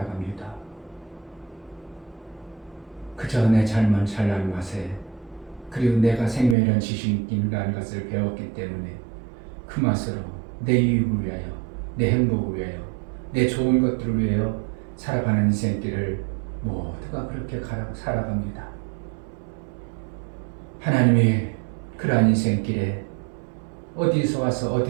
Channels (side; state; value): left; drops out; at 6.6 s